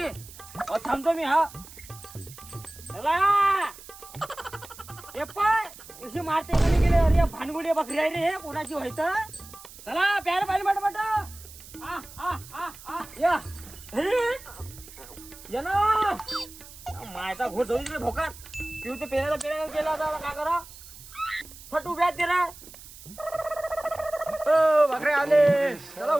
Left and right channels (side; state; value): right; noise; hiss, 18 dB below the sound